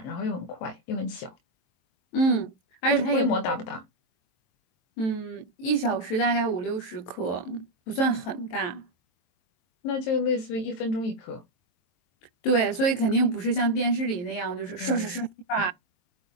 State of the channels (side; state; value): right; late; 23 ms